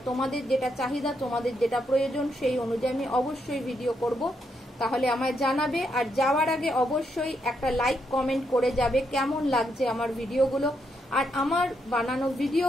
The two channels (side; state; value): both; normal; correlation 0.79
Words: তোমাদের যেটা চাহিদা, তোমাদের যেটা প্রয়োজন, সেই অনুযায়ী আমি অবশ্যই ভিডিও করব। তাহলে আমায় জানাবে, আর যাওয়ার আগে অবশ্যই একটা লাইক কমেন্ট করে যাবে কেমন লাগছে আমার ভিডিওগুলো, আর আমার বানানো